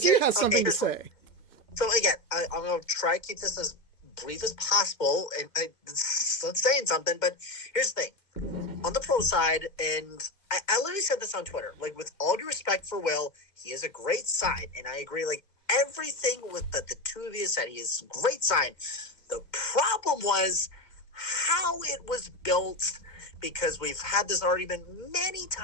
has something to say. So again, I'm going to try to keep this as brief as possible, and it's not saying something, but here's the thing. On the pro side, and I literally said this on Twitter, with all due respect for Will, he is a great sign, and I agree, everything with the two of you said, he is a great sign. The problem was how it was built, because we've had this argument many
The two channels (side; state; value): right; late; 2.2 ms